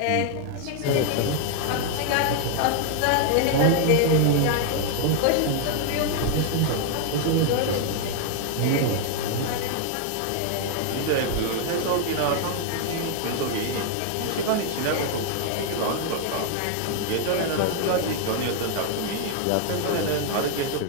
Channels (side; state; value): both; different; correlation 0.00